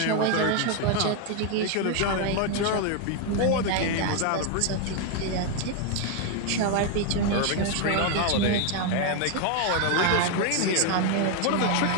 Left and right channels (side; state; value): both; different; correlation 0.01